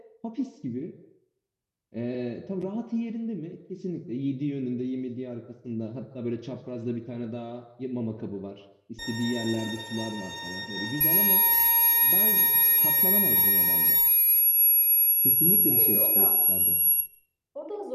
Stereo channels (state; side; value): identical; both; correlation 1.00